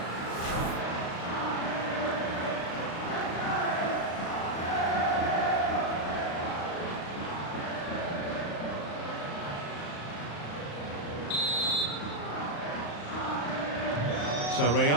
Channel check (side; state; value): right; late; 35 ms